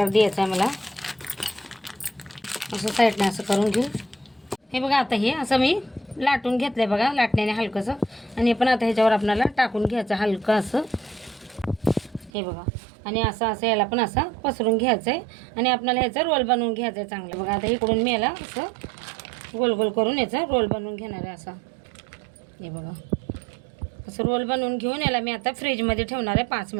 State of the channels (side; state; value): left; drops out; at 12.3 s